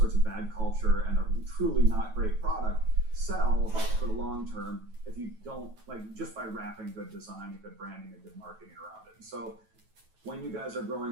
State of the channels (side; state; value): left; late; 9.2 ms